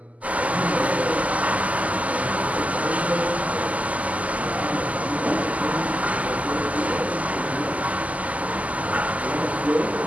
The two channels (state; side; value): late; left; 0.072 ms